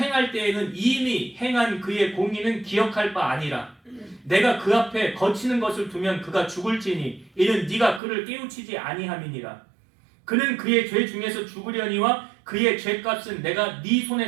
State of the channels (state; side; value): drops out; left; at 8.0 s